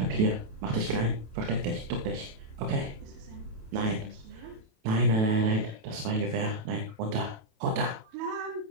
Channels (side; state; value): left; late; 27 ms